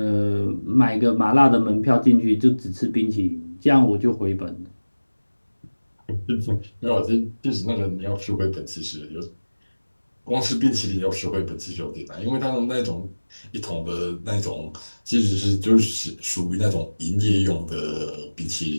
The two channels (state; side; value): inverted; both; correlation -1.00